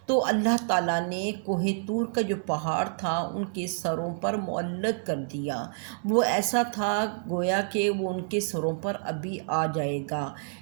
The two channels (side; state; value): left; silent; digital silence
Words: تو اللہ تعالیٰ نے کوہ طور کا جو پہاڑ تھا ان کے سروں پر معلق کر دیا۔ وہ ایسا تھا گویا کہ وہ ان کے سروں پر ابھی آ جائے گا،